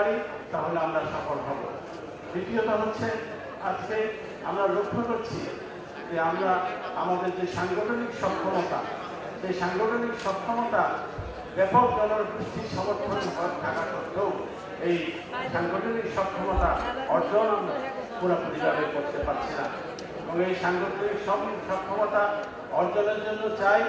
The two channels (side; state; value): both; identical; correlation 1.00